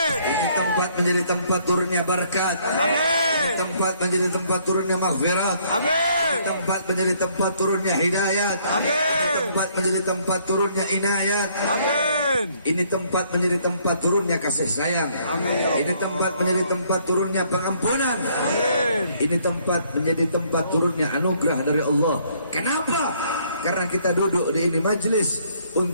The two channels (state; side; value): inverted; both; correlation -0.65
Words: Ini tempat menjadi tempat turunnya berkat. Amin. Ini tempat menjadi tempat turunnya maghfirat. Amin. Ini tempat menjadi tempat turunnya hidayat. Amin. Ini tempat menjadi tempat turunnya inayat. Amin. Ini tempat menjadi tempat turunnya kasih sayang. Amin. Ini tempat menjadi tempat turunnya pengampunan. Amin. Ini tempat menjadi tempat turunnya anugerah dari Allah. Kenapa? Karena kita duduk di ini majlis